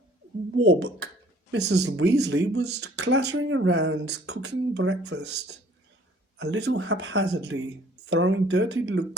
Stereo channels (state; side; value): normal; both; correlation 0.56